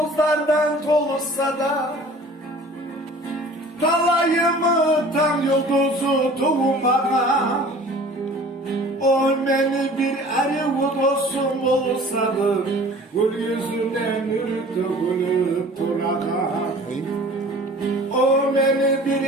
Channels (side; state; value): both; normal; correlation 0.46